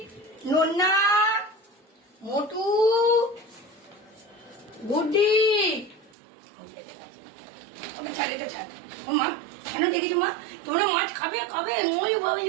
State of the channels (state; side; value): drops out; left; at 6.1 s